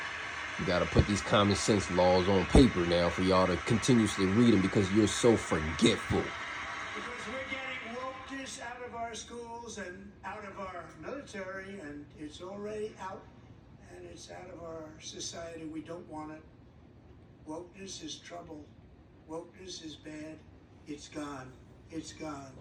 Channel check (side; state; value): both; identical; correlation 1.00